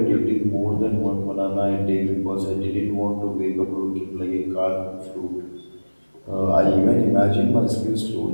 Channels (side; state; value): both; inverted; correlation -1.00